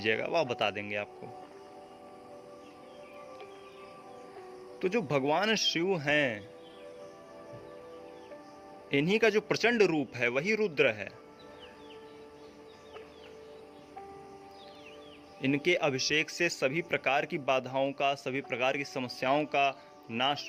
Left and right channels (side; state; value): both; identical; correlation 1.00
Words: वह बता देंगे आपको। तो जो भगवान शिव हैं, इन्हीं का जो प्रचंड रूप है वही रुद्र है। इनके अभिषेक से सभी प्रकार की बाधाओं का, सभी प्रकार की समस्याओं का नाश